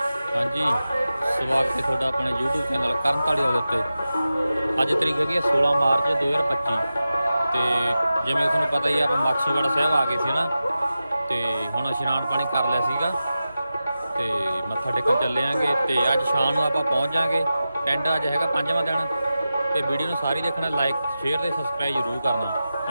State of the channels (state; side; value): inverted; both; correlation -0.93